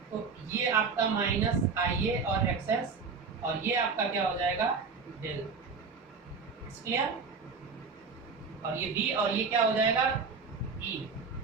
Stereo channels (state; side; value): quieter; left; 5.0 dB